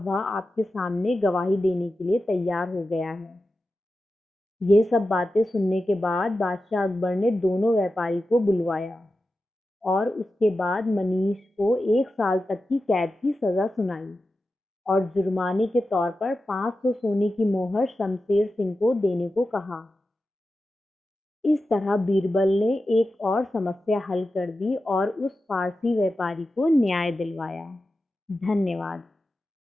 वह आपके सामने गवाही देने के लिए तैयार हो गया है। ये सब बातें सुनने के बाद बादशाह अकबर ने दोनों व्यापारी को बुलवाया और उसके बाद मनीष को 1 साल तक की कैद की सज़ा सुनाई और जुर्माने के तौर पर 500 सोने की मोहर शमशेर सिंह को देने को कहा। इस तरह बीरबल ने एक और समस्या हल कर दी और उस पारसी व्यापारी को न्याय दिलवाया। धन्यवाद।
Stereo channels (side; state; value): both; normal; correlation 0.92